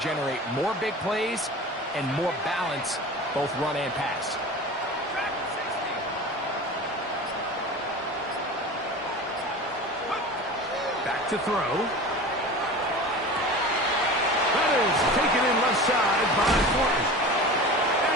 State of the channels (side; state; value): both; normal; correlation 0.34